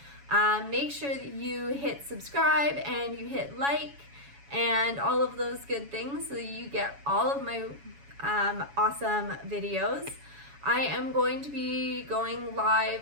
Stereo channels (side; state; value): left; late; 7.1 ms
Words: Make sure that you hit subscribe and you hit like and all of those good things so that you get all of my awesome videos. I am going to be going